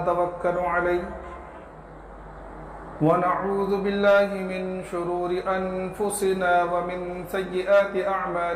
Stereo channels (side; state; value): both; identical; correlation 1.00